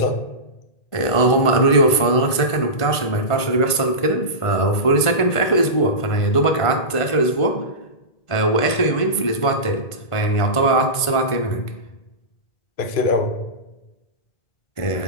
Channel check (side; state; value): right; late; 1.5 ms